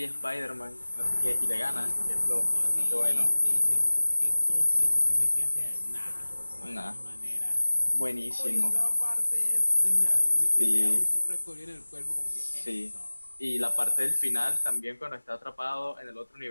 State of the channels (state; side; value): inverted; both; correlation -1.00